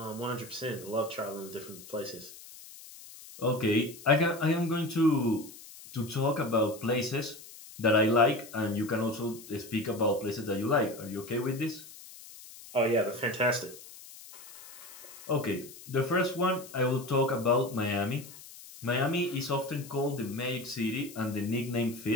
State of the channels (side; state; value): left; noise; hiss, 17 dB below the sound